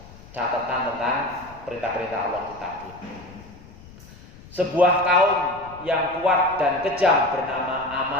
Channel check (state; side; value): noise; left; rumble, 20 dB below the sound